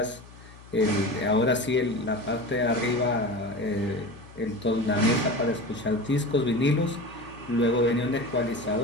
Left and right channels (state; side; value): noise; left; hum, 21 dB below the sound